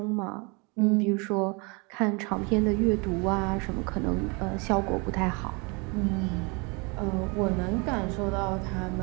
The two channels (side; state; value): left; quieter; 30.1 dB